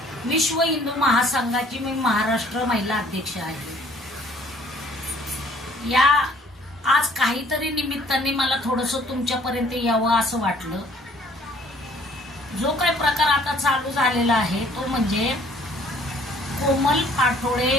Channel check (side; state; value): both; normal; correlation 0.58